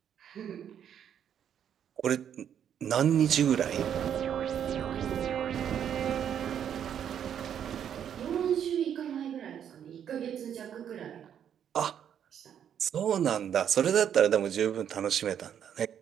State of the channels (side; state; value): left; quieter; 9.1 dB